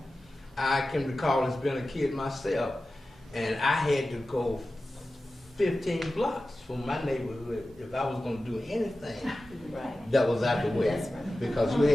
I can recall as being a kid myself, and I had to go 15 blocks from my neighborhood if I was going to do anything that was out the way. Because you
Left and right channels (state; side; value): normal; both; correlation 0.95